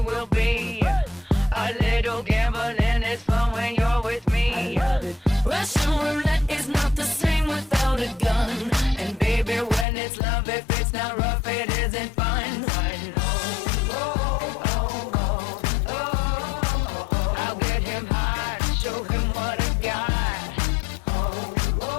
be. A little gambling is fun when you're with me. Russian roulette is not the same without a gun. And baby, when it's love, if it's not rough, it isn't fun. I'll get him hard, show him what I got.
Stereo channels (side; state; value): right; drops out; at 9.9 s